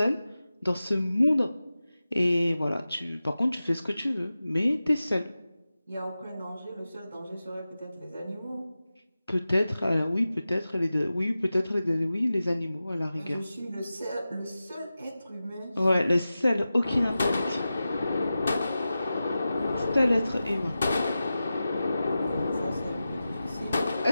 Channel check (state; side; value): inverted; both; correlation -0.94